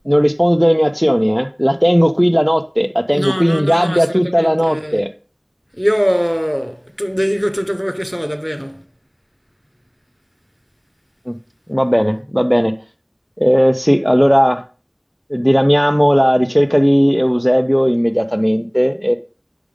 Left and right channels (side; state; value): both; identical; correlation 1.00